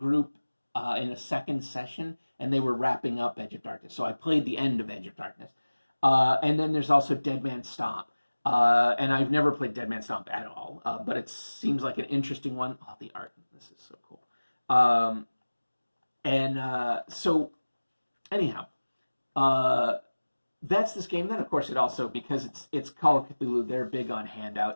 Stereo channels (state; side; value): inverted; both; correlation -1.00